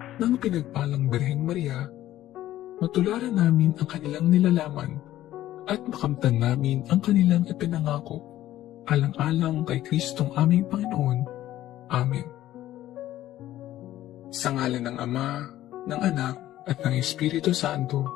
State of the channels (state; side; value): quieter; right; 13.8 dB